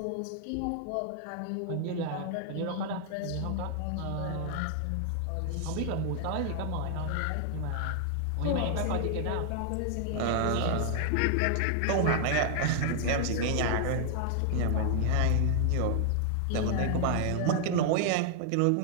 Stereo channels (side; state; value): both; different; correlation 0.00